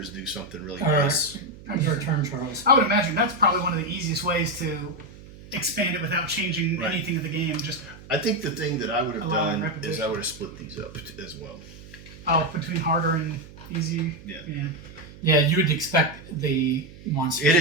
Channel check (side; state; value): right; noise; hum, 18 dB below the sound